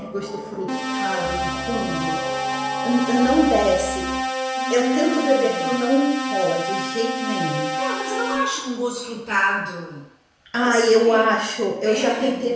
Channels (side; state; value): both; identical; correlation 1.00